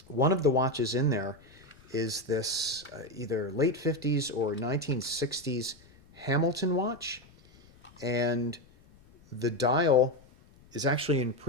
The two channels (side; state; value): left; noise; rumble, 27 dB below the sound